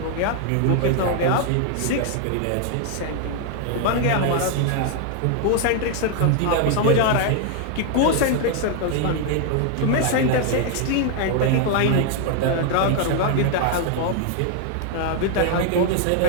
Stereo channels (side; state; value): both; different; correlation 0.00